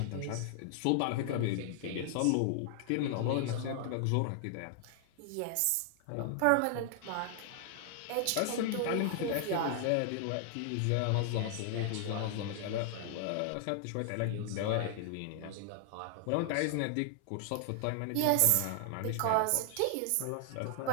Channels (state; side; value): different; both; correlation 0.00